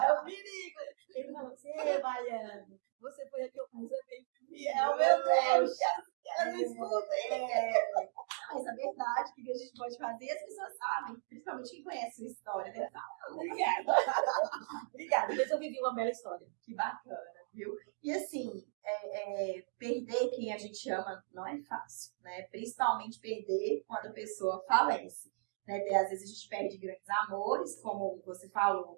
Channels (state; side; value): silent; left; digital silence